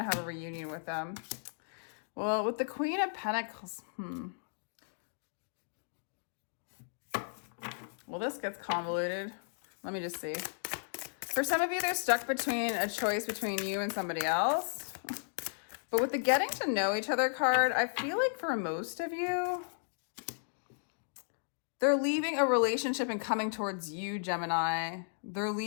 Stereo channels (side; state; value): right; silent; digital silence